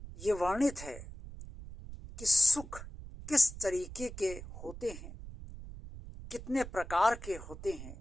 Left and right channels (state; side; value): noise; right; rumble, 13 dB below the sound